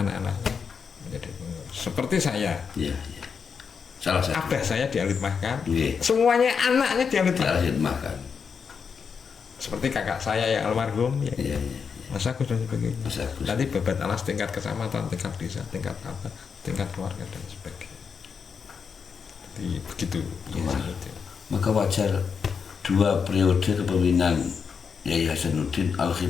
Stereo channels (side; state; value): right; quieter; 6.1 dB